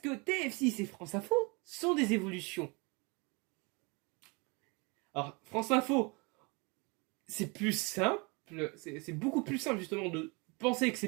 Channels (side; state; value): left; quieter; 29.4 dB